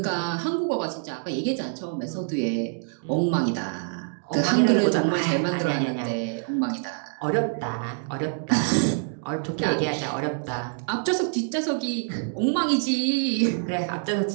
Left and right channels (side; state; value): left; silent; 61 dB below the other